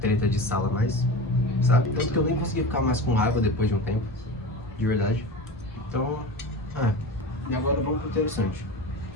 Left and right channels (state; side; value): normal; both; correlation 0.30